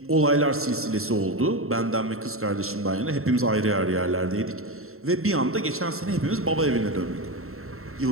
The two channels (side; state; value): left; late; 0.62 ms